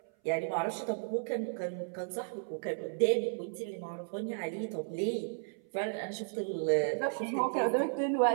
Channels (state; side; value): silent; left; 55 dB below the other